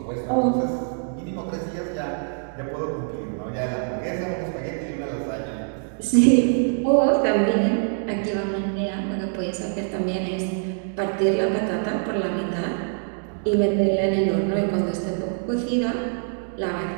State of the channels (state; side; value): silent; left; digital silence